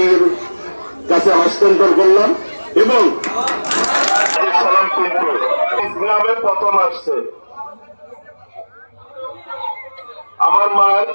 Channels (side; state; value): both; inverted; correlation -1.00